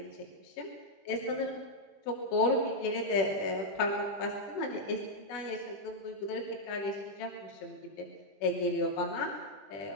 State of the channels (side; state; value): right; late; 20 ms